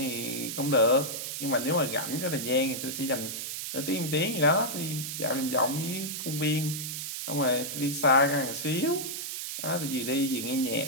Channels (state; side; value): noise; right; hiss, 5 dB below the sound